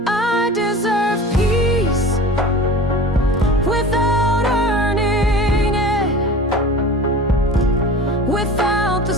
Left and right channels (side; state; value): both; normal; correlation 0.38